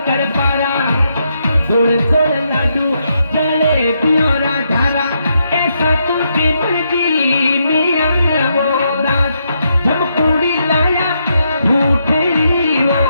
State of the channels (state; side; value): inverted; both; correlation -0.79